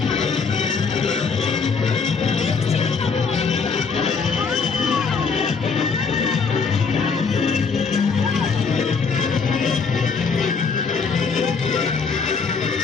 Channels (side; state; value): right; quieter; 5.2 dB